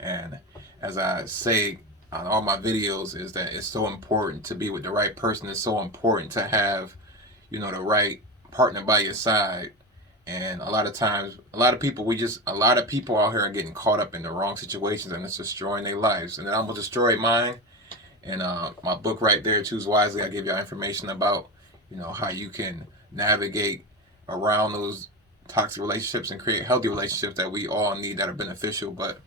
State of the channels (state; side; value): normal; both; correlation 0.21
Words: as I say on all my videos, is that it's so important to be with the right person. It's so important to have the right partner by your side. And a lot of times, a lot of people out here are getting caught up in the wrong situations, and it's destroying their lives. And then I'm gonna destroy mine. And my book right there, Choose Wisely, I give y'all information about, how you can navigate around those toxic relationships and create healthy relationships that we all need that are beneficial. But